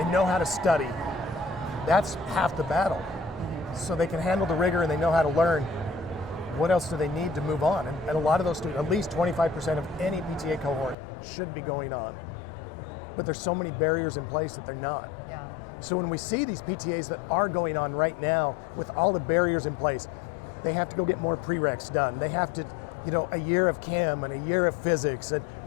know how to study. That's half the battle. So they can handle the rigor and they know how to learn. What else do they need to move on? And a lot of those students, at least 25% of any PTA cohort should be going on. But there's so many barriers in place that they're not. Yeah. So when we see these PTAs that are going on right now with all the barriers in place, they have to go get more prereqs done. They have to, a year of chem and a year of physics and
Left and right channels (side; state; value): right; drops out; at 11.0 s